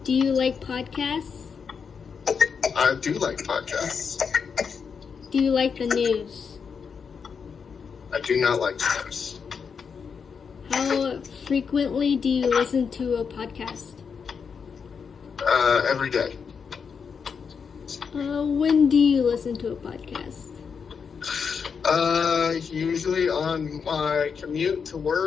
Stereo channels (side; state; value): right; quieter; 6.1 dB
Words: Do you like podcasts? I do like podcasts. Do you like the news? I do not like news. How frequently do you listen to a podcast? Every day. When do you listen to a podcast? Usually on my commute to